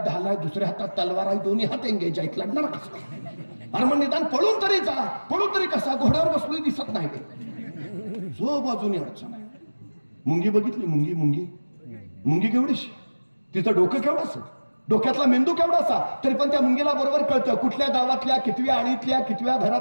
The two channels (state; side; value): inverted; both; correlation -1.00